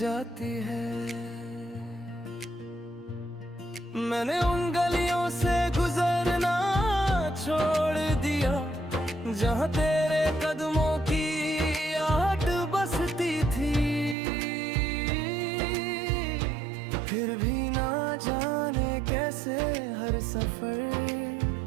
है। मैंने उन गलियों से गुजरना छोड़ दिया जहाँ तेरे कदमों की आहट बसती थी। फिर भी ना जाने कैसे हर सफर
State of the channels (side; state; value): left; drops out; at 14.2 s